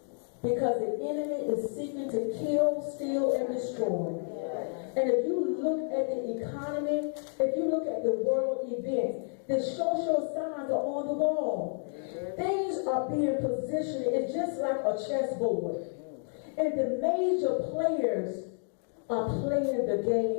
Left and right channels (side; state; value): right; silent; 57 dB below the other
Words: Because the enemy is seeking to kill, steal, and destroy. And if you look at the economy, if you look at the world events, the social signs are on the wall. Things are being positioned. It's just like a chessboard. And the major players are playing the